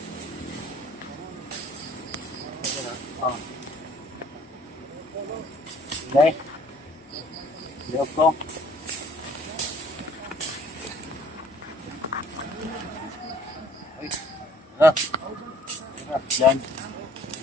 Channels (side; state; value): both; normal; correlation 0.58